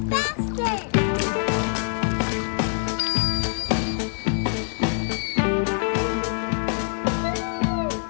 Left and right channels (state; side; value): silent; right; 62 dB below the other